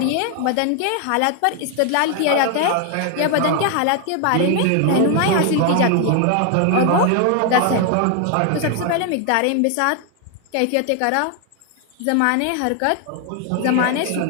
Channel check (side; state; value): both; different; correlation 0.00